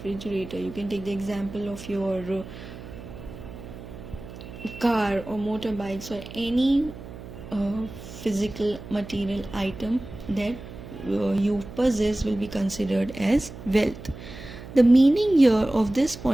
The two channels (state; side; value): noise; right; hum, 14 dB below the sound